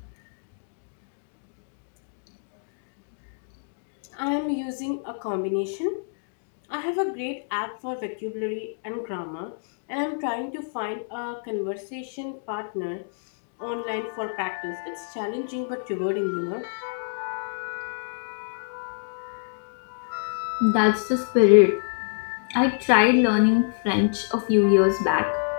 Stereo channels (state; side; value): silent; right; digital silence